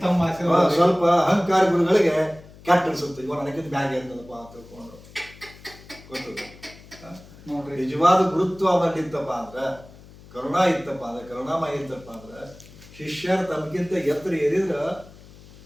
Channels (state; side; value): noise; left; hum, 21 dB below the sound